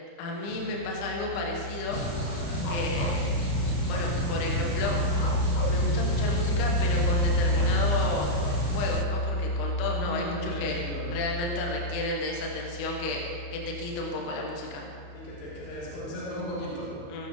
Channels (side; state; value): right; late; 34 ms